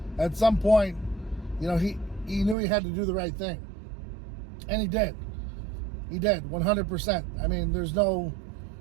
at some point, he knew he had to do the right thing. And he did. He did, 100%. I mean, there's no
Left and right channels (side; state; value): left; drops out; at 2.6 s